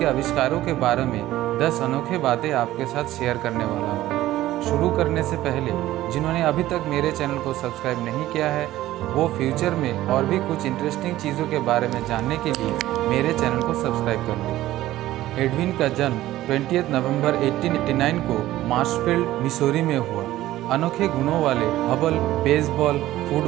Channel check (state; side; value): quieter; left; 15.1 dB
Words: आविष्कारों के बारे में 10 अनोखे बातें आपके साथ शेयर करने वाला हूँ। शुरू करने से पहले जिन्होंने अभी तक मेरे चैनल को सब्सक्राइब नहीं किया है, वो फ्यूचर में और भी कुछ इंटरेस्टिंग चीज़ों के बारे में जानने के लिए मेरे चैनल को सब्सक्राइब कर लें। एडविन का जन्म 20 नवंबर 1889 को मार्शफील्ड, मिसौरी में हुआ। अनोखे गुणों वाले हबल बेसबॉल,